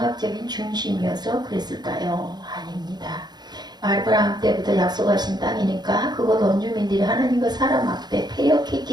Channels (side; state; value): left; late; 0.20 ms